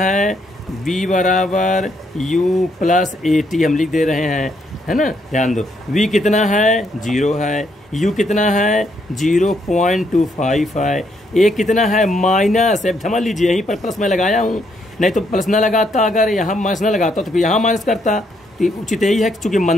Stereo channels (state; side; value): normal; both; correlation 0.74